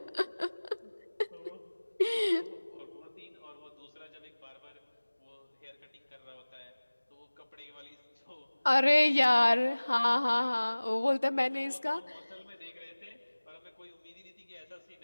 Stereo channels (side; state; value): both; inverted; correlation -1.00